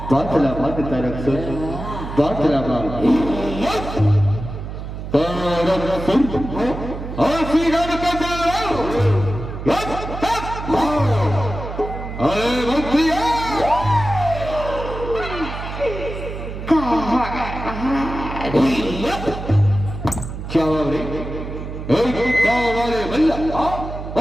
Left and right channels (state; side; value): noise; right; hum, 8 dB below the sound